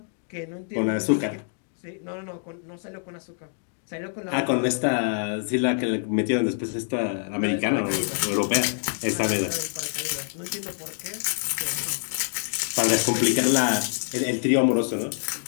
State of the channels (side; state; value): right; silent; digital silence